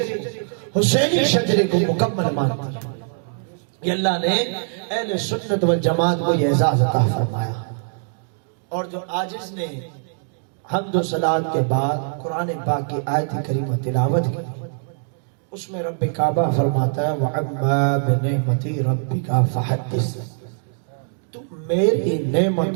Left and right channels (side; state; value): left; silent; digital silence